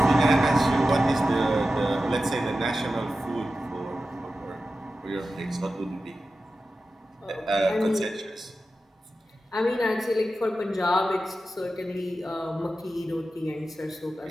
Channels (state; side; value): normal; both; correlation 0.93